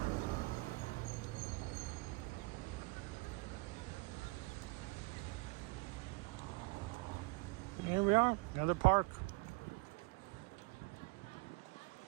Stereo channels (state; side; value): quieter; left; 26.2 dB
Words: Here we are, another park.